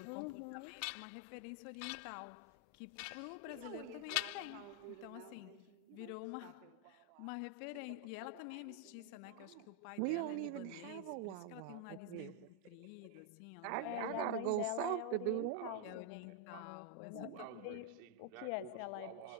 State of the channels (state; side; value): different; both; correlation 0.00